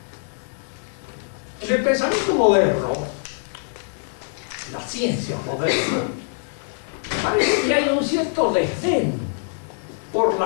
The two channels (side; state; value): right; silent; digital silence